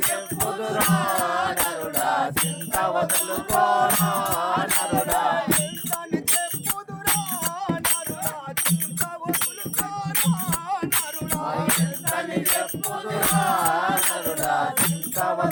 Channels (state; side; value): identical; both; correlation 1.00